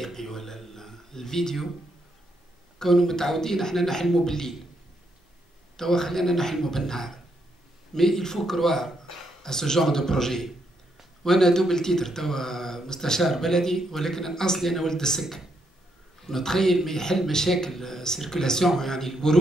ولا الفيديو، كونوا متعودين احنا نحلموا بالليل، توا خلينا نحلموا بالنهار. مي il faut croire à ce genre de projet. وانا دوبل تيتر توا مستشار بلدي، ولكن اصلي انا ولد السكه. نتخيل ما يحل مشاكل سيركولاسيون يعني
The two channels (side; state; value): both; normal; correlation 0.77